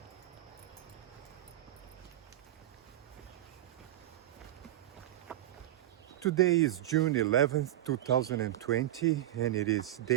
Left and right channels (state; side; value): quieter; left; 14.0 dB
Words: Today is June 11th, 2020, and it is